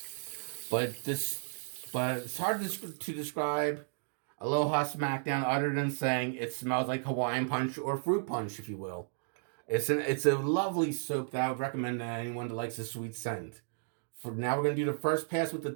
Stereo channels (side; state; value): left; silent; digital silence